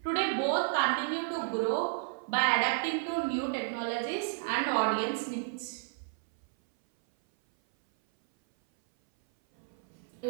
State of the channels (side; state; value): left; silent; 57 dB below the other